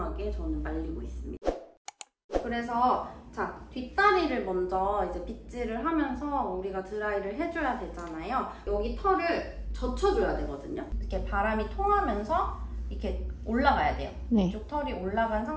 저는 말리고 있습니다. 그래서 자, 뒷다리를 먼저 이제 빗질을 하면서 우리가 드라이를 해줘야 되잖아요. 여기 털을 젖혀줘야 되거든요. 이렇게 바람이 통하면서 이렇게 올라가야 돼요. 네. 이쪽 털이 올라간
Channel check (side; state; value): both; identical; correlation 1.00